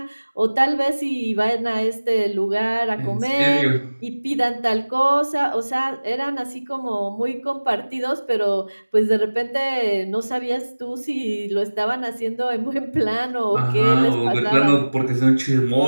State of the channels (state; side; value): inverted; both; correlation -1.00